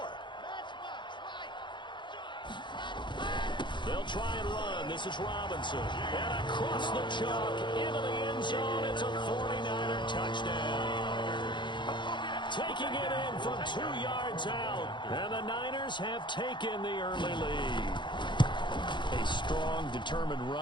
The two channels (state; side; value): late; right; 0.23 ms